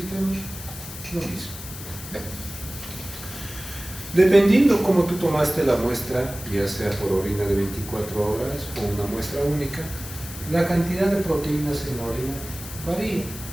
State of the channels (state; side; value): noise; left; hiss, 12 dB below the sound